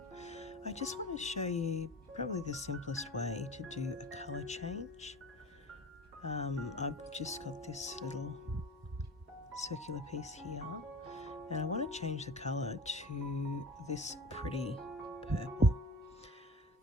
I just want to show you probably the simplest way to do a colour change. I've just got this little circular piece here and I want to change the colour to this pretty purple.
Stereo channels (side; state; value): both; normal; correlation 0.36